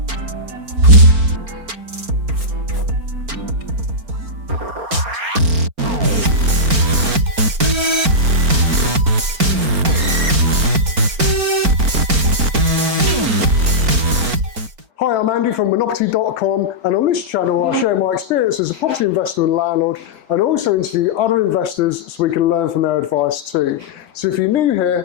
Hi, I'm Andy from Monoperty.com, and on this channel I share my experience as a property investor and landlord, and also interview other investors so we can learn from their advice too. So if you're new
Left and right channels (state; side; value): late; left; 4.4 ms